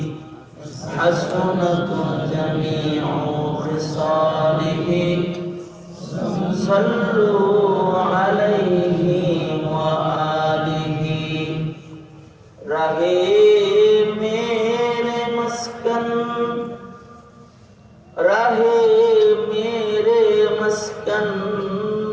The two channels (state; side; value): identical; both; correlation 1.00